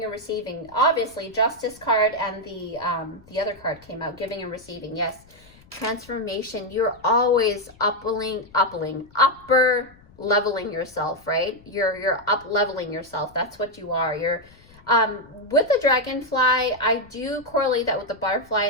and receiving. Obviously, Justice card and the other card came out, giving and receiving. Yes, transformation. You're always upper leveling yourself, right? You're up leveling yourself. That's what you are. You're with the dragonfly, I do correlate that with the butterfly,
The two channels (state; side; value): noise; left; rumble, 26 dB below the sound